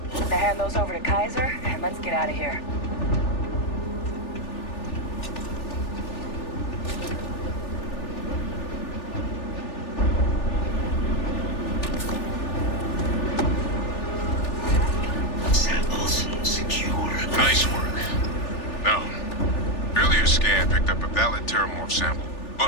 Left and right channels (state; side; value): late; right; 3.4 ms